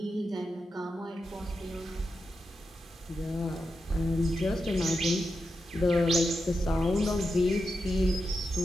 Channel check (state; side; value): normal; both; correlation 0.88